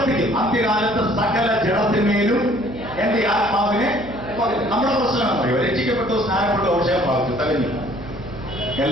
അന്ത്യകാലത്ത് സകല ജഡത്തിന്മേലും എന്റെ ആത്മാവിനെ. നമ്മുടെ പ്രശ്നം പറയും, രക്ഷിക്കപ്പെട്ടു, സ്നാനപ്പെട്ടു, അഭിഷേകം പ്രാപിച്ചു, തകഞ്ഞു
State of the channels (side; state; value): right; noise; hum, 16 dB below the sound